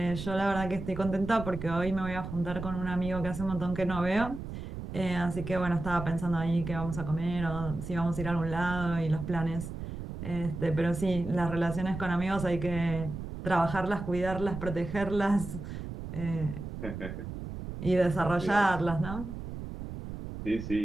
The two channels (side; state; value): right; noise; rumble, 8 dB below the sound